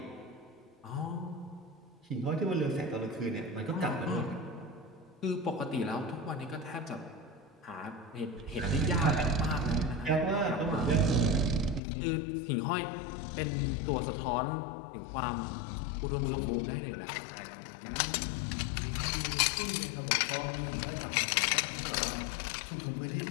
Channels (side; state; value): right; drops out; at 11.8 s